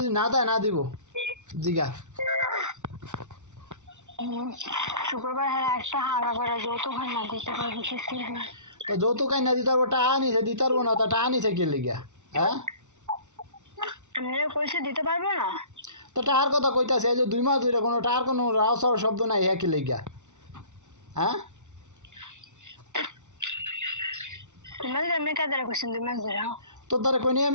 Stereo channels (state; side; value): late; left; 0.84 ms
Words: না দেয় না দিব। জিগা শুক্রবার হলে একটা হাগা করে যৌতুক না দিতে পারবো। তো যৌতুক না দিতে পারবো, টাকা আনিছে দিতে পারবো না, তা টাকা আনিছে কে লিগা? হ্যাঁ, আমি কইছে দিতে পারবো না। তো টাকার কথা কইতাছে, এই যে 2 মাস ধরে কোনো টাকার কোনো রাও সাও শব্দ নাই, হ্যাঁ কি লিগা? হ্যাঁ, তোমার আমি কাদের কইছেন 2 মাস ধরে? তোর দ্বারা কইনি